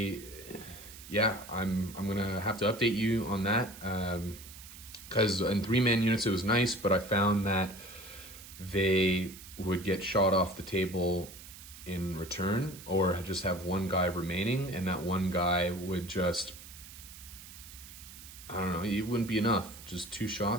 gonna have to update you on that, because in 3-man units it was nice, but I found that they would get shot off the table in return, or just have 1 guy remaining, and that 1 guy would just, I don't know, it wouldn't be enough. Just 2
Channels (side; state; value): right; noise; hiss, 16 dB below the sound